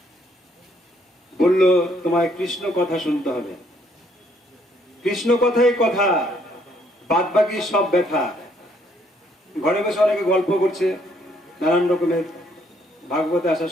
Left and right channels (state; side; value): normal; both; correlation 0.67